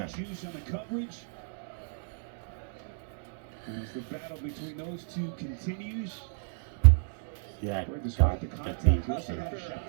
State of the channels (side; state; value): left; silent; digital silence